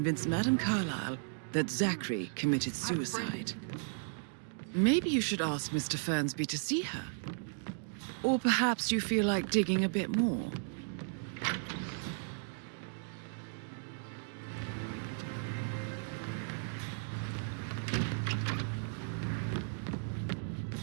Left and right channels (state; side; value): silent; left; digital silence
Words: Madame Carlyle that Zachary committed suicide. Maybe you should ask Mr. Fernsby to see her. Or perhaps you feel like digging a bit more.